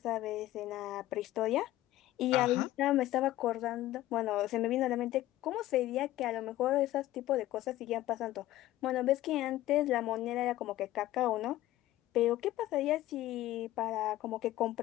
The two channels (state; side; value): quieter; right; 15.3 dB